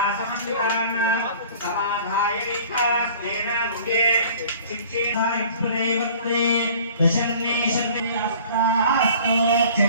समाधाय विकास्तेन मुखे शिक्षेना इत्युदैवत्रे दशन्ने शन्ने अस्तास्तु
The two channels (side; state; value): both; inverted; correlation -0.48